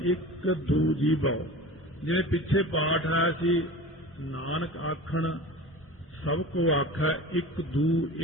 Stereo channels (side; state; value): both; normal; correlation 0.35